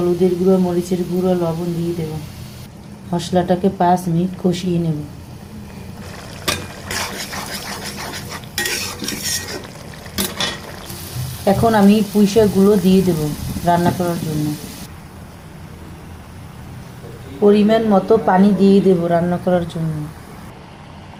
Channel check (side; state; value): both; identical; correlation 1.00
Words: গুঁড়ো, মরিচের গুঁড়ো, লবণ দিয়ে দেব। মশলাটাকে 5 মিনিট কষিয়ে নেব। এখন আমি পুঁইশাকগুলো দিয়ে দেব রান্না করার জন্য। পরিমাণ মতো পানি দিয়ে দেব রান্না করার জন্য।